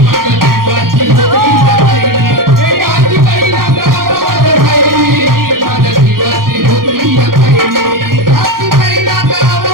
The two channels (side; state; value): left; late; 0.92 ms